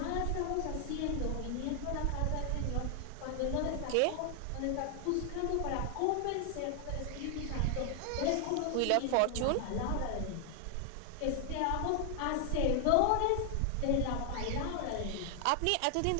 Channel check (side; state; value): both; different; correlation 0.00